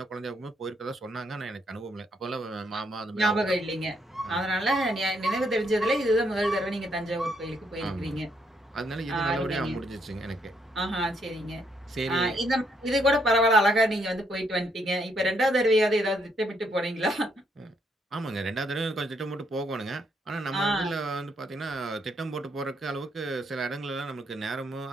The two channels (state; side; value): normal; both; correlation 0.73